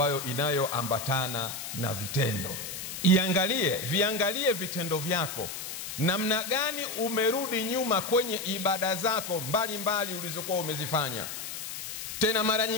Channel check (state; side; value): noise; left; hiss, 7 dB below the sound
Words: inayoambatana na vitendo. Viangalie vitendo vyako, namna gani umerudi nyuma kwenye ibada zako mbalimbali ulizokuwa umezifanya. Tena mara